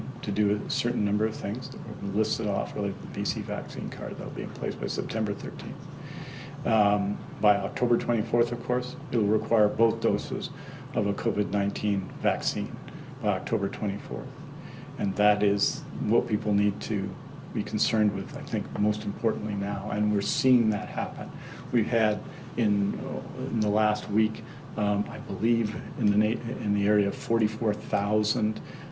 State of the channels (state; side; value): identical; both; correlation 1.00